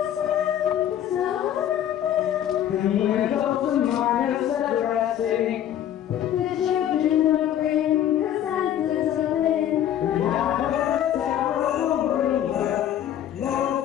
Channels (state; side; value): quieter; right; 10.8 dB